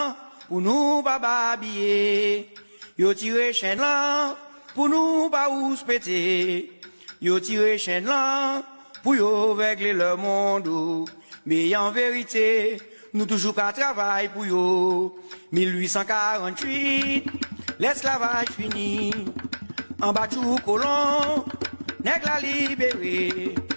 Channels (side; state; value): both; inverted; correlation -1.00